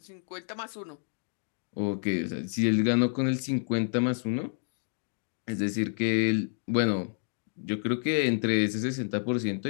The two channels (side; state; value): right; silent; digital silence